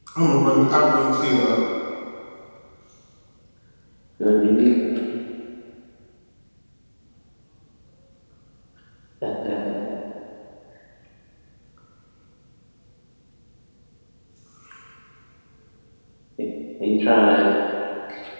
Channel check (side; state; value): both; inverted; correlation -1.00